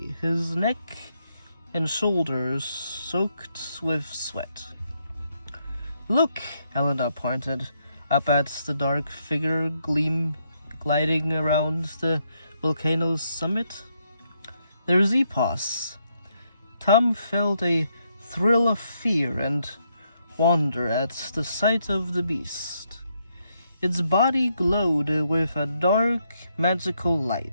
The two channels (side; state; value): both; inverted; correlation -0.77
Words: his neck and shoulders soaked with sweat. "Look!" Elena pointed up at the dark figure gliding around the volcano's summit. "There's EPOS." Tom felt a thrill of fear and wonder at the sight of the beast. Its body glowed with a dark, magical